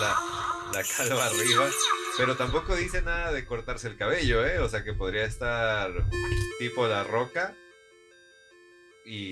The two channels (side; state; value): both; identical; correlation 1.00